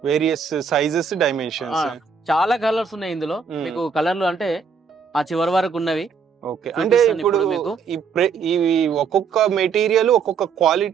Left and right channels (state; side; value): quieter; left; 5.9 dB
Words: వేరియస్ సైజెస్, డైమెన్షన్స్, చాలా కలర్స్ ఉన్నాయి ఇందులో. మీకు కలర్లు అంటే ఆ చివరి వరకు ఉన్నవి. ఓకే, అంటే ఇప్పుడు మీకు ఈ ఒక్కొక్క మెటీరియల్ ఒక్కొక్క